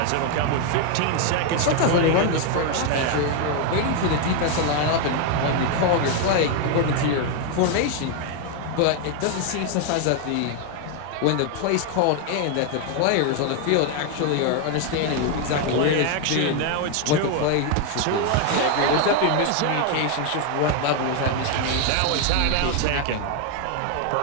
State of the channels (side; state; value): both; different; correlation 0.01